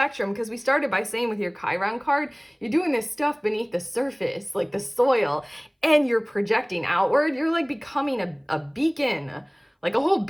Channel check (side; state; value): both; identical; correlation 1.00